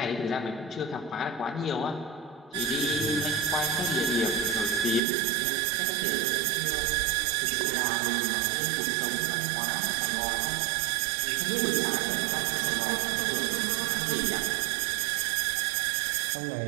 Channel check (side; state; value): left; drops out; at 5.0 s